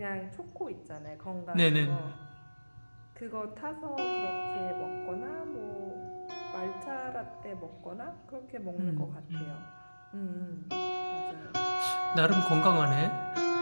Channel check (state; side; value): inverted; both; correlation -1.00